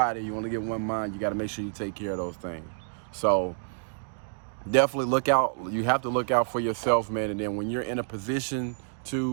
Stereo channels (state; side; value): silent; left; digital silence